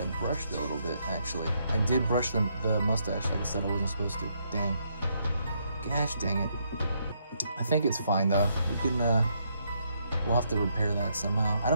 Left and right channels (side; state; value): both; inverted; correlation -0.75